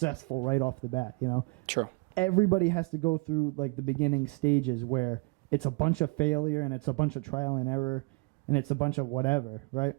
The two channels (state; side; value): quieter; left; 30.2 dB